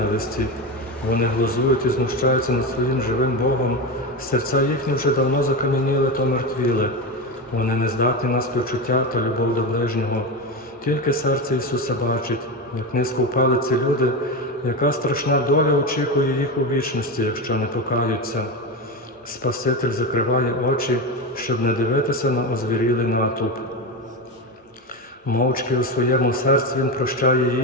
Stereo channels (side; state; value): both; normal; correlation 0.18